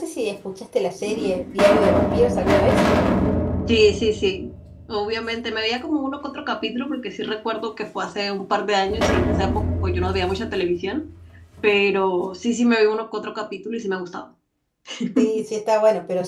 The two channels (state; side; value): identical; both; correlation 1.00